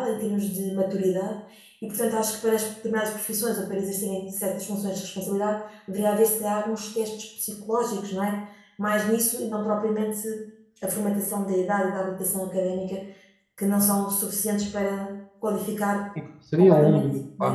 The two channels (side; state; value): both; identical; correlation 1.00